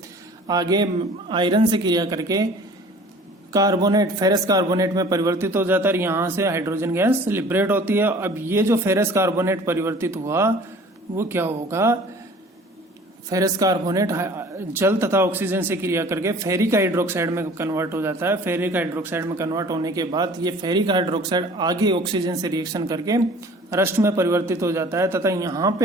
आगे आयरन से क्रिया करके कार्बोनेट, फेरस कार्बोनेट में परिवर्तित हो जाता है और यहाँ से हाइड्रोजन गैस लिबरेट होती है। अब ये जो फेरस कार्बोनेट परिवर्तित हुआ वो क्या होगा, फेरस कार्बोनेट जल तथा ऑक्सीजन से क्रिया करके फेरिक हाइड्रोक्साइड में कन्वर्ट हो जाता है। फेरिक हाइड्रोक्साइड में कन्वर्ट होने के बाद ये फेरिक हाइड्रोक्साइड आगे ऑक्सीजन से रिएक्शन करके रस्ट में परिवर्तित हो जाता है तथा यहाँ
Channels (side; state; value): both; normal; correlation 0.48